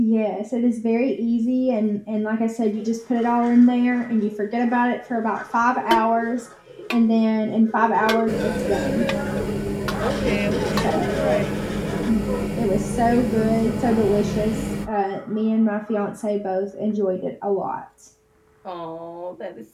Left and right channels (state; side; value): identical; both; correlation 1.00